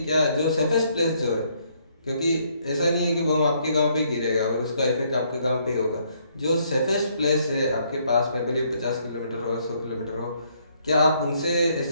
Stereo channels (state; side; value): inverted; both; correlation -0.70